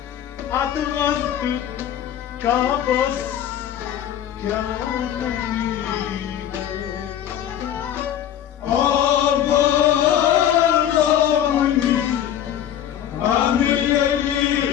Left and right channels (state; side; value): quieter; right; 10.6 dB